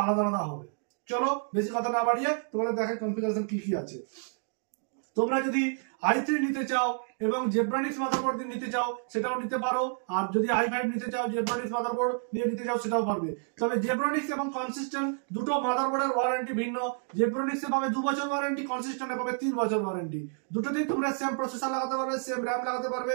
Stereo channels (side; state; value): left; silent; 56 dB below the other